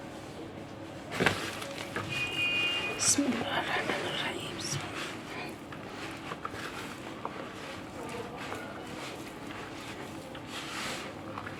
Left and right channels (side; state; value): both; identical; correlation 1.00